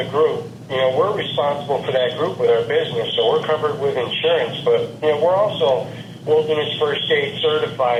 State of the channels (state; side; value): identical; both; correlation 1.00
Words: group, we're responsible for that group with our business, so we're covered with insurance. But we're also Wilderness First Aid